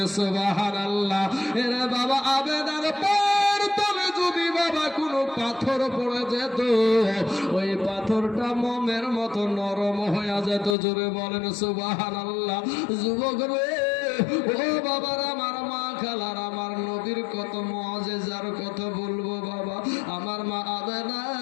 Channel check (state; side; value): drops out; right; at 10.8 s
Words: সুবহানাল্লাহ। এরা বাবা আমেনার পায়ের তলে যদি বাবা কোনো পাথর পড়ে যেত, ওই পাথরটা মোমের মতো নরম হয়ে যেত। জোরে বলেন সুবহানাল্লাহ। যুবক রে, ও বাবার, আমার মা খালার, আমার নবীর কত মুআজিজার কথা বলবো বাবা। আমার মা আমেনা